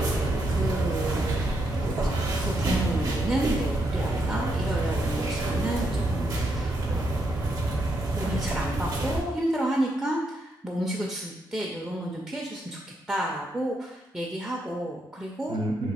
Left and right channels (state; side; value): normal; both; correlation 0.79